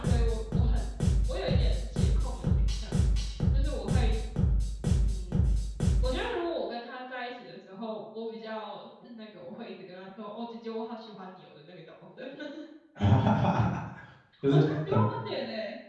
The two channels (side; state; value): both; identical; correlation 1.00